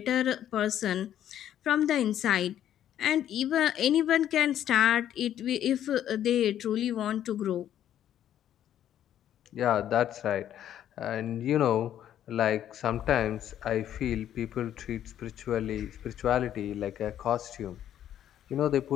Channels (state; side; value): quieter; right; 10.9 dB